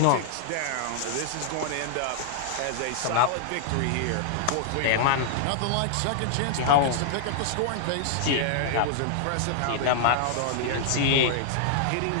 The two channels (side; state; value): both; different; correlation -0.01